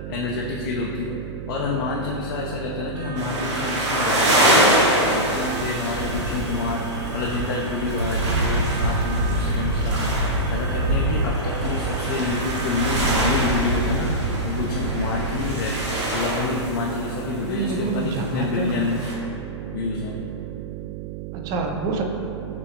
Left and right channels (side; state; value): right; noise; hum, 8 dB below the sound